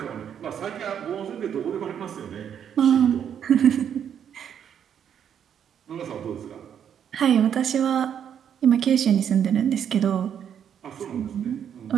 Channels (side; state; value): left; quieter; 8.7 dB